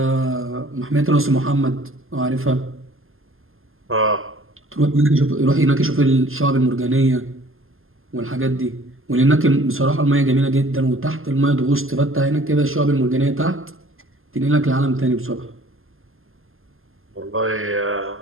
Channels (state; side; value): late; left; 0.60 ms